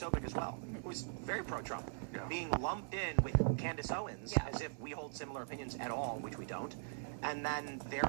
as well, who's very pro-Trump, being lumped in with Candace Owens as if we hold similar opinions at all, which we don't. And then their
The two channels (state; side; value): silent; left; 51 dB below the other